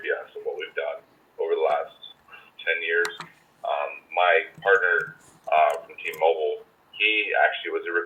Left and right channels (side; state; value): both; identical; correlation 1.00